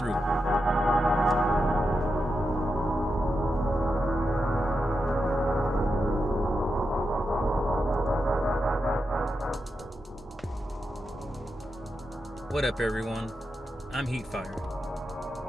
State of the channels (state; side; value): normal; both; correlation 0.87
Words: What up, everyone? I'm